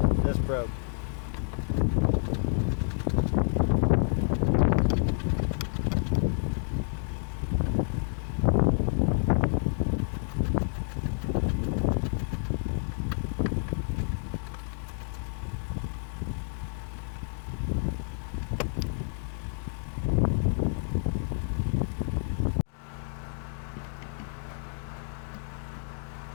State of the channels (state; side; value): silent; right; 58 dB below the other